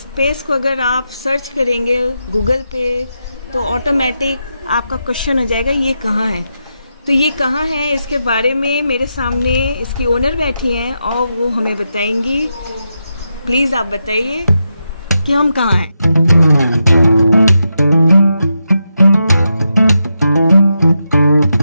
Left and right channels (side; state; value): both; inverted; correlation -0.86